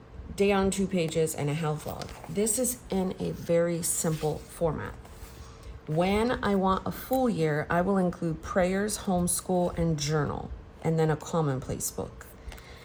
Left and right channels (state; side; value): identical; both; correlation 1.00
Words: day on 2 pages, and a health log. This is in a very simple format. When I want a full year, I will include prayers, homeschool, and journal, and then a commonplace book.